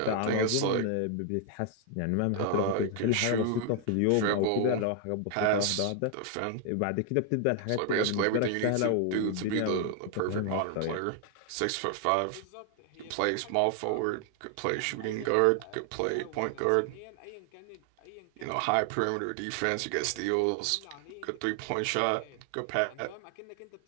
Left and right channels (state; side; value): different; both; correlation 0.00